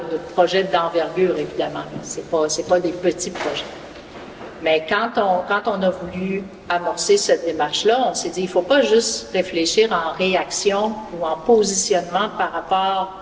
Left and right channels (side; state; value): both; identical; correlation 1.00